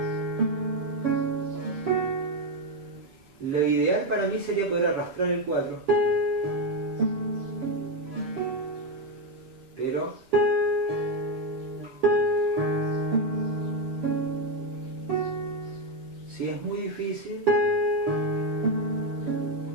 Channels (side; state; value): left; late; 7.5 ms